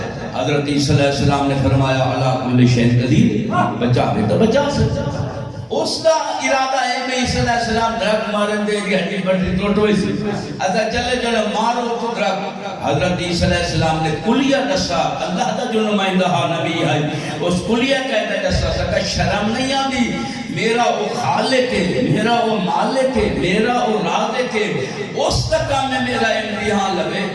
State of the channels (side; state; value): both; identical; correlation 1.00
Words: حضرت عیسیٰ علیہ السلام نے فرمایا اللہ کل شیء قدیر، بچا بھی تو بچا سکتا. اس کا ارادہ ہے کہ عیسی علیہ السلام درخت مارن دے گی ہڈی پٹی ٹوٹ ہوئی سی اچھا چلے چلے مارو تو درخت حضرت عیسی علیہ السلام نے کلیہ دسا اللہ دا جو نمائندہ نبی ہے اس کلیہ کہتا دسا سکا شرم نہیں آدھی میرا وہ خالق ہے میرا وہ مالک ہے میرا وہ رازق ہے اس کا کام ہے میرا امتحان لگے